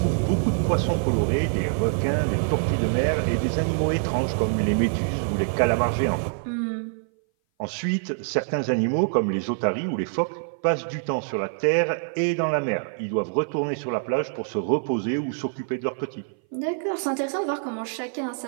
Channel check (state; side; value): silent; left; 58 dB below the other